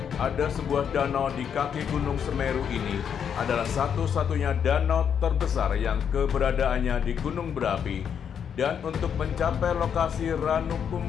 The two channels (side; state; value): right; quieter; 7.8 dB